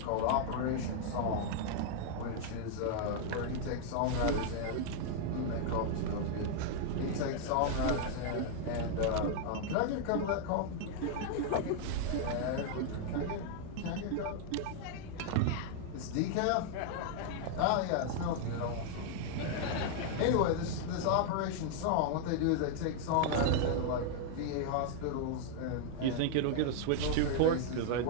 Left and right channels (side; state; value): both; different; correlation -0.01